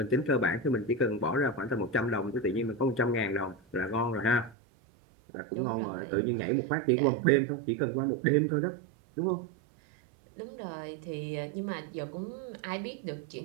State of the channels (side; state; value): left; drops out; at 4.5 s